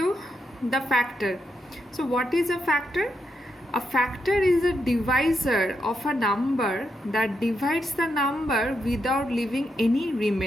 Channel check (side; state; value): both; normal; correlation 0.82